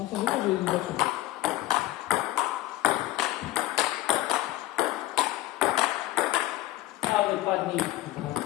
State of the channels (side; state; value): right; quieter; 16.3 dB